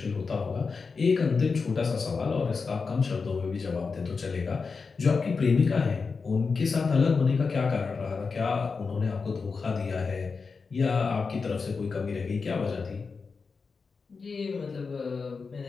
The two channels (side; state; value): right; quieter; 4.8 dB